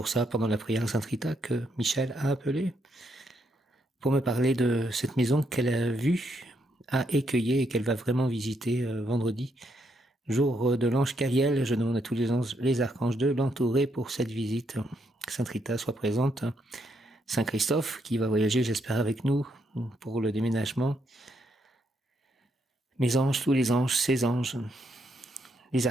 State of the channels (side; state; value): both; normal; correlation 0.77